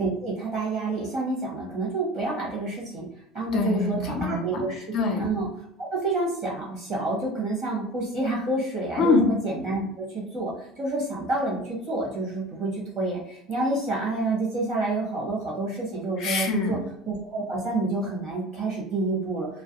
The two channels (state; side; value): normal; both; correlation 0.39